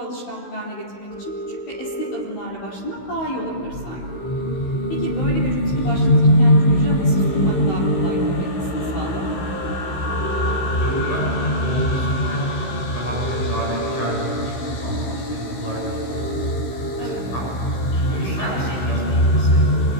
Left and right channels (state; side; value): late; right; 16 ms